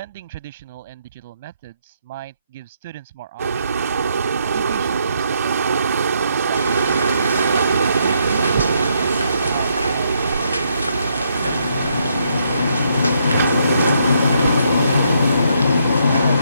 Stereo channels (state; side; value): inverted; both; correlation -0.74